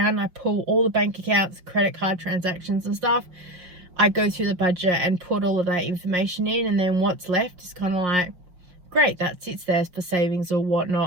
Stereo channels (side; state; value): left; late; 5.6 ms